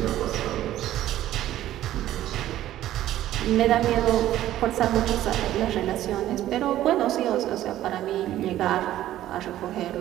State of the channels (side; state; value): left; quieter; 13.4 dB